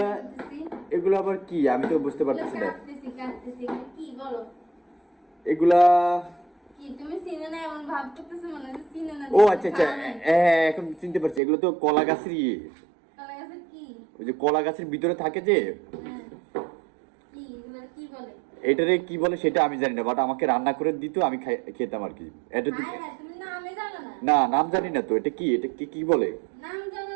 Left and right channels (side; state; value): left; drops out; at 11.4 s